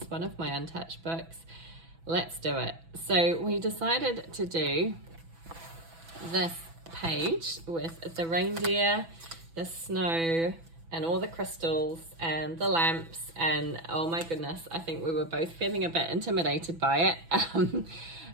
one of my untouched books. Let's do it. So we decided to do this page with the reindeer, the snow, and all the crystals and the lamps, and oh my goodness, I think we were both feeling a bit intimidated by it.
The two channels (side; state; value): left; late; 6.0 ms